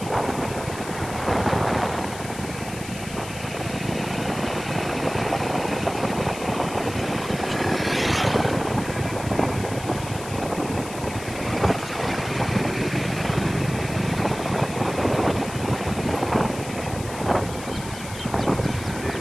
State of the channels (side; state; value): left; noise; hiss, 13 dB below the sound